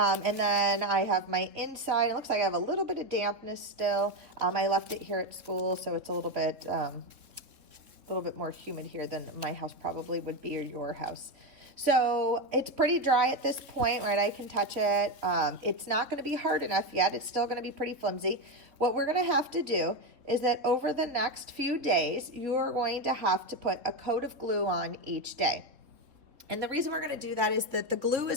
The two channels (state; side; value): late; left; 3.7 ms